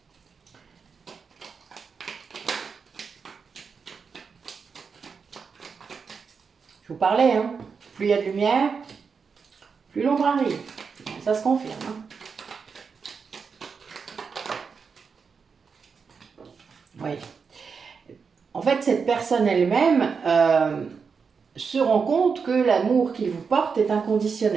Je vous parlais, hein, plus il y a de lumière, plus l'ombre arrive. Ça se confirme. Hein. Oui. En fait, cette personne elle-même se rend compte que l'amour qu'il vous porte est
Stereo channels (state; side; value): quieter; left; 5.6 dB